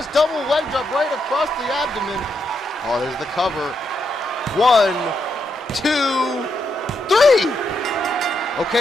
Double leg drop right across the abdomen. Oh, there's the cover. 1, 2, 3.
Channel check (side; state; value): both; normal; correlation 0.80